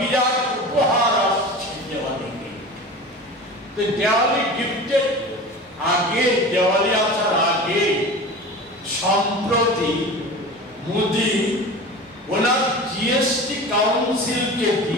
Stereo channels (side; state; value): both; normal; correlation 0.34